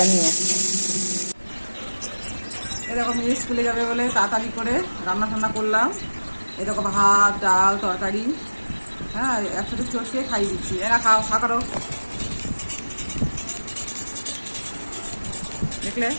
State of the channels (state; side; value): inverted; both; correlation -1.00